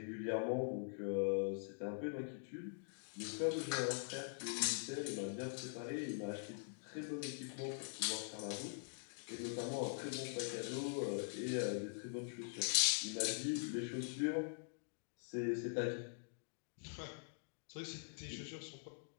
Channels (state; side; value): silent; right; digital silence